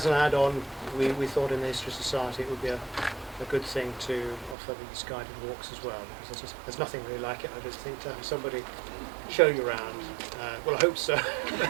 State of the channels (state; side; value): drops out; left; at 4.5 s